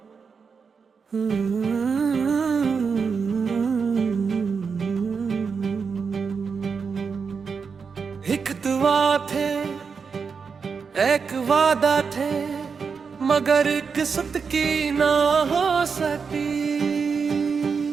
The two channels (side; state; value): left; quieter; 5.6 dB